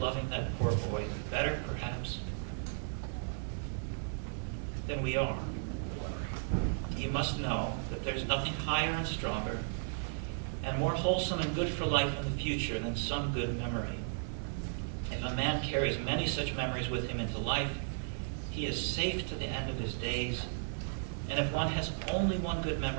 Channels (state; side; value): silent; left; digital silence